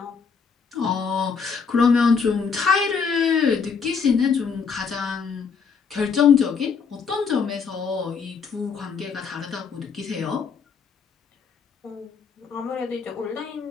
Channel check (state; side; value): quieter; right; 5.8 dB